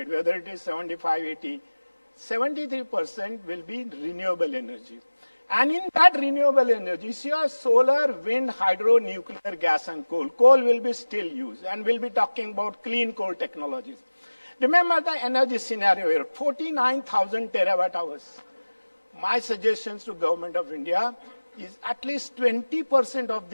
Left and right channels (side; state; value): both; inverted; correlation -1.00